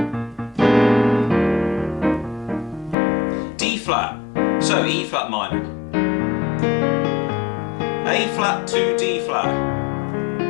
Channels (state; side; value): drops out; right; at 3.0 s